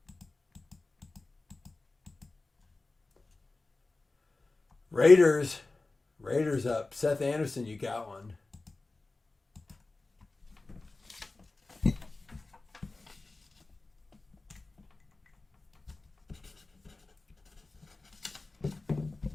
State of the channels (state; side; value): quieter; right; 3.4 dB